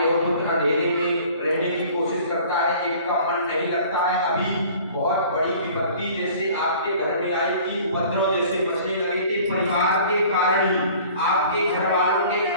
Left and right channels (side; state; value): both; inverted; correlation -0.49